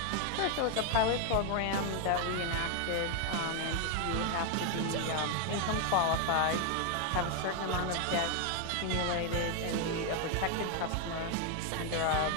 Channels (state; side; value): different; both; correlation 0.01